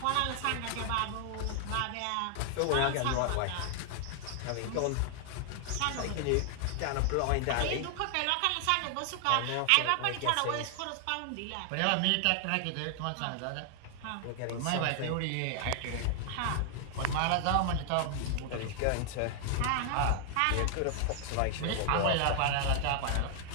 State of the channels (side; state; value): both; different; correlation 0.00